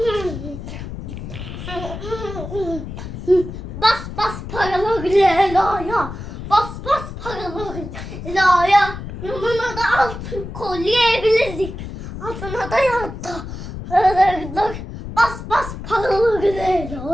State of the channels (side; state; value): left; noise; rumble, 9 dB below the sound